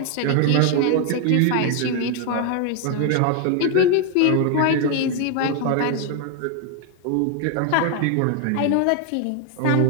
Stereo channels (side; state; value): both; different; correlation 0.00